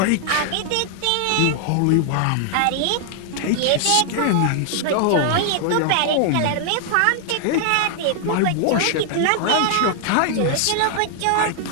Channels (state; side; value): different; both; correlation 0.00